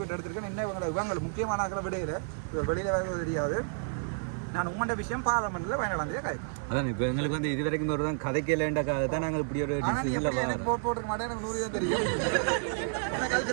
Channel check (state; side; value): silent; left; 57 dB below the other